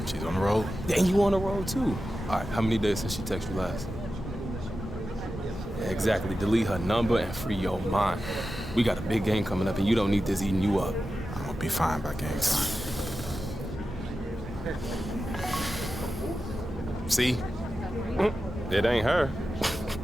She's on the road. And you on the road too. All right, how many days since she texted you last? Yeah, exactly. Delete her number and free your mind. We got a big game coming up, and you don't need this eating you up. I'm gonna be fine by game time. See? It ain't her.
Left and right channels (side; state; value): both; normal; correlation 0.92